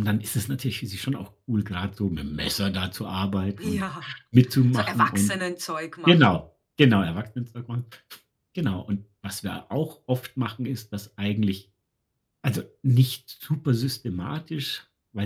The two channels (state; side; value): identical; both; correlation 1.00